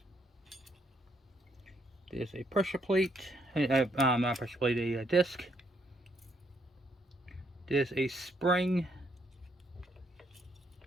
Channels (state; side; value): normal; both; correlation 0.72